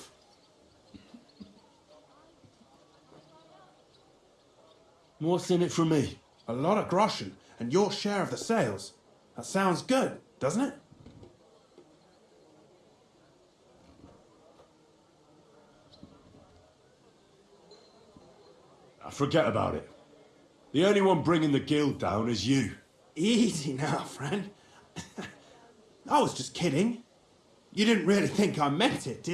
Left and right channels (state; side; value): identical; both; correlation 1.00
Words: What's in it for me? A lot of groschen and your share of the sales. That sounds good, doesn't it? Forget about it. The only one bringing the guild down is you. Easy now, friend. I was just kidding. You didn't really think I meant it,